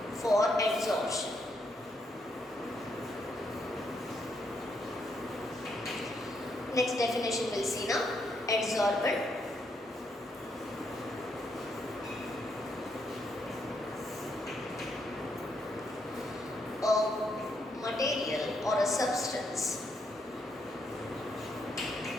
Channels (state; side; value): normal; both; correlation 0.77